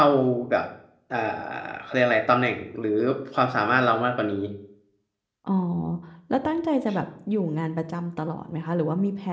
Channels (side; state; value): both; identical; correlation 1.00